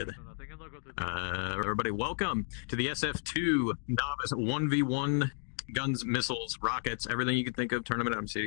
Everybody, welcome to the SF2 Novice 1v1 guns, missiles, rockets, everything you can think of tournament. I'm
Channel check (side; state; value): right; silent; 55 dB below the other